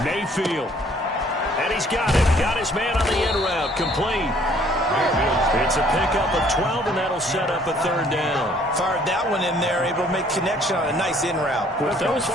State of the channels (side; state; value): both; normal; correlation 0.60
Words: Mayfield. And he's got it. Got his man on the end route. Complete. It's a pickup of 12, and that'll set up a 3rd down. Fired that one in there, able to make connection on a nice in route. With those